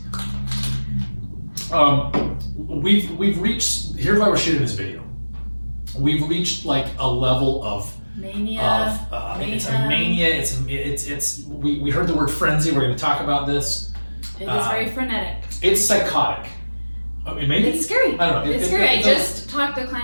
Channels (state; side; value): inverted; both; correlation -1.00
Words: We've reached. Here's why we're shooting this video. We've reached like a level of mania. It's a mania. We heard the word frenzy. We're going to talk about this. It is very frenetic. It's psychotic. Maybe it's scary. I don't know. It's scary. I just talked the